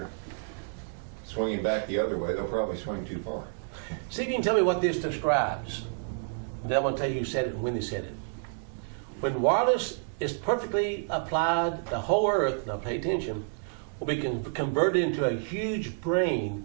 swinging back the other way. They'll probably swing too far. See if you can tell me what this describes. Then I'm going to tell you who said it and when they said it. When wireless is perfectly applied, the whole earth, now pay attention, will be converted into a huge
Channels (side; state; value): left; silent; digital silence